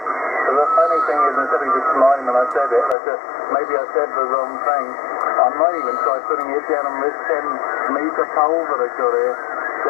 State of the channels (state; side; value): drops out; right; at 3.0 s